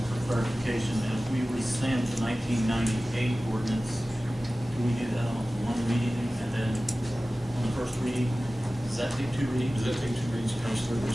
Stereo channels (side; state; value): both; normal; correlation 0.96